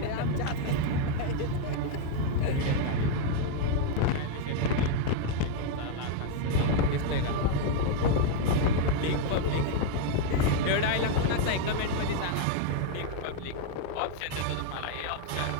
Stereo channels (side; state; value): both; different; correlation 0.00